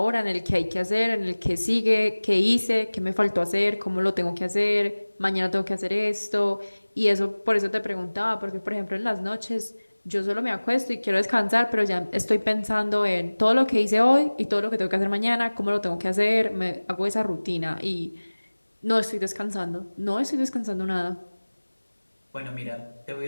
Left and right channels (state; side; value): inverted; both; correlation -1.00